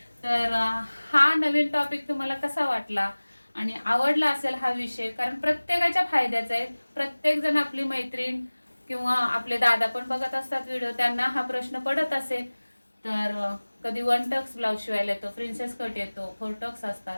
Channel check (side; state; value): both; inverted; correlation -1.00